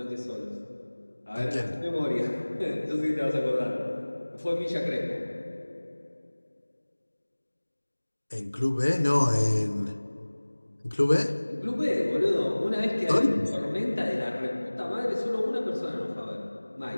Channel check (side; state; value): both; inverted; correlation -1.00